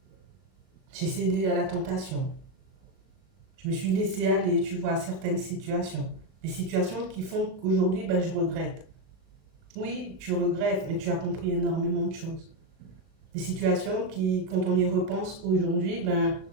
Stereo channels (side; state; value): left; late; 37 ms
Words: J'ai cédé à la tentation. Je me suis laissée aller, tu vois, à certaines situations. Des situations qui font qu'aujourd'hui, ben, je regrette. Oui, tu regrettes, mais tu as compris énormément de choses. Des situations qui, quand on y repense aujourd'hui, ben,